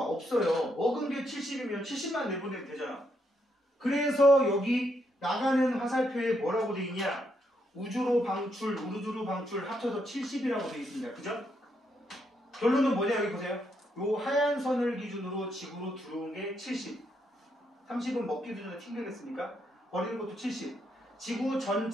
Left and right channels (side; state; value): both; normal; correlation 0.77